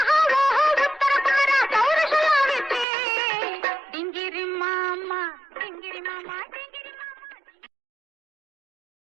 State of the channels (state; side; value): drops out; left; at 2.9 s